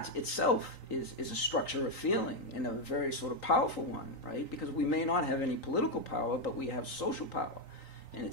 itself is a structure of feeling, and a very sort of powerful one, right? Because we may not have any political power, but we have social power. And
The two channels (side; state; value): right; late; 3.9 ms